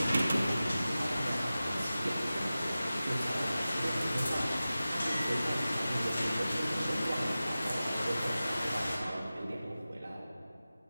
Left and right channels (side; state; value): both; inverted; correlation -0.95